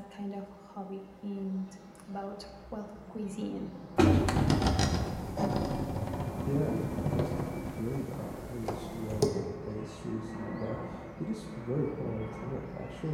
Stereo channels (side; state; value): both; identical; correlation 1.00